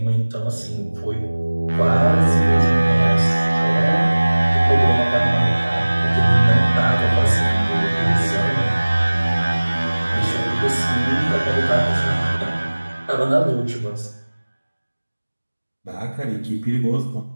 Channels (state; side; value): inverted; both; correlation -1.00